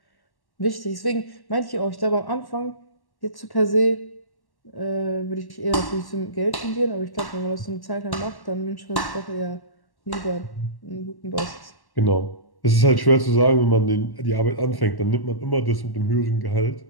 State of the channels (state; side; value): late; right; 1.1 ms